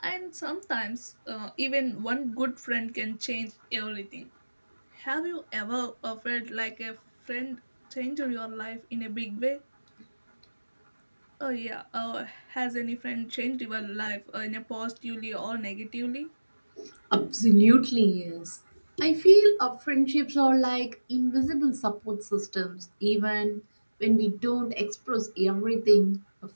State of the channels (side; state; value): both; inverted; correlation -1.00